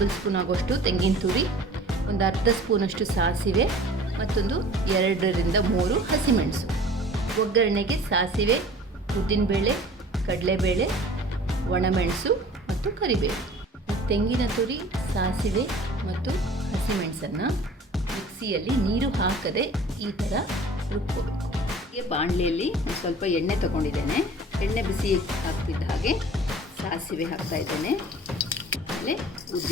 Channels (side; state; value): both; normal; correlation 0.46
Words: ಸ್ಪೂನ್ ಆಗೋಷ್ಟು ತೆಂಗಿನ ತುರಿ, ಒಂದು ಅರ್ಧ ಸ್ಪೂನಷ್ಟು ಸಾಸಿವೆ, ಮತ್ತೊಂದು 2 ರಿಂದ 3 ಹಸಿಮೆಣಸು. ಒಗ್ಗರಣೆಗೆ ಸಾಸಿವೆ, ಉದ್ದಿನಬೇಳೆ, ಕಡಲೆಬೇಳೆ, ಒಣಮೆಣಸು ಮತ್ತು ಕರಿಬೇವು. ತೆಂಗಿನ ತುರಿ, ಸಾಸಿವೆ ಮತ್ತು ಹಸಿಮೆಣಸನ್ನು ಮಿಕ್ಸಿಯಲ್ಲಿ ನೀರು ಹಾಕದೆ ಈ ಥರ ರುಬ್ಕೋಬೇಕು. ಹೀಗೆ ಬಾಣಲೆಯಲ್ಲಿ ಒಂದು ಸ್ವಲ್ಪ ಎಣ್ಣೆ ತಗೊಂಡಿದ್ದೇನೆ. ಎಣ್ಣೆ ಬಿಸಿ ಆಗ್ತಿದ್ದ ಹಾಗೆ ಸಾಸಿವೆ ಹಾಕ್ತಾಯಿದ್ದೇನೆ. ಆಮೇಲೆ